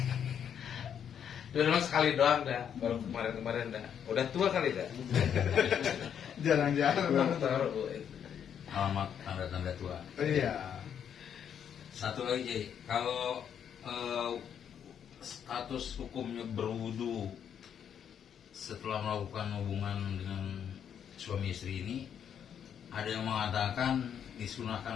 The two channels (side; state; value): right; quieter; 8.5 dB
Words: Udah memang sekali doang dah. Baru kemarin dah. Udah tua kali dah. Jarang-jarang. Alamat tanda-tanda tua. Iya. Satu lagi, Jay. Kalau status hukumnya berwudu setelah melakukan hubungan dengan suami istri ini, ada yang mengatakan